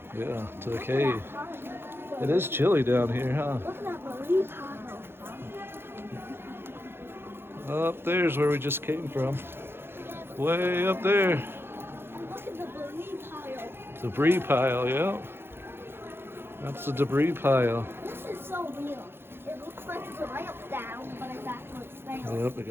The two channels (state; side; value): late; left; 0.11 ms